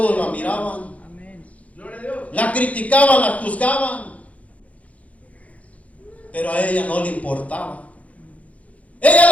la miraban, la criticaban, la juzgaban, pero a ella no le importaba.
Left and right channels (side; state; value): right; late; 0.066 ms